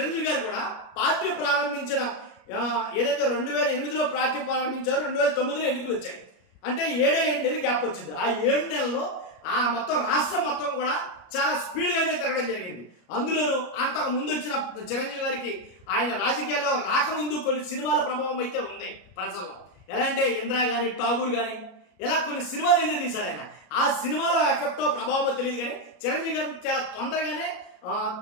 గారు కూడా పార్టీ ప్రారంభించిన ఏదైతే 2008లో పార్టీ ప్రారంభించారో 2009లో ఎన్నికలు వచ్చాయి. అంటే 7 నెలలు గ్యాప్ వచ్చింది. ఆ 7 నెలల్లో ఆ మొత్తం రాష్ట్రం మొత్తం కూడా చాలా స్పీడ్గా అయితే తిరగడం జరిగింది. అందులోనూ అంతకు ముందు వచ్చిన చిరంజీవి గారికి ఆయన రాజకీయాల్లో రాకముందు కొన్ని సినిమాల ప్రభావం అయితే ఉంది ప్రజల్లో. ఎలా అంటే ఇంద్రా కానీ ఠాగూర్ కానీ ఇలా కొన్ని సినిమాలు అయితే తీశాడు ఆయన. ఆ సినిమాలో ఎఫెక్టో ప్రభావమో తెలియదు కానీ చిరంజీవి గారిని చాలా తొందరగానే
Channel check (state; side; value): late; right; 33 ms